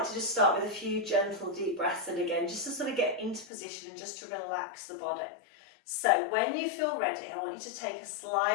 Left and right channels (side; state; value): right; drops out; at 3.5 s